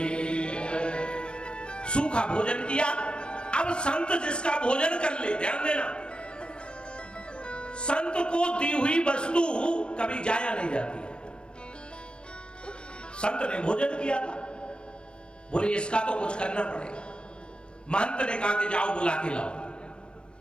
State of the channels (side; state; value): right; late; 0.055 ms